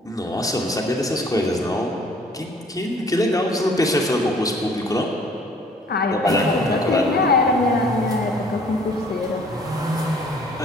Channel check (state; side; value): normal; both; correlation 0.56